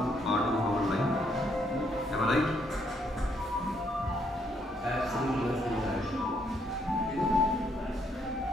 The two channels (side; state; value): both; normal; correlation 0.72